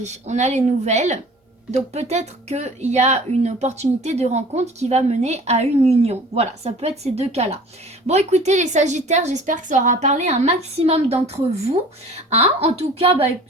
on a les nouvelles. Donc peut-être qu'il y a une opportunité de rencontre qui va mener à une union. Voilà, ça peut être ces deux cas-là. Bon, écoutez les Sagittaires, j'espère que ça aura parlé à un maximum d'entre vous. Hein, en tout cas,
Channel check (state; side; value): normal; both; correlation 0.46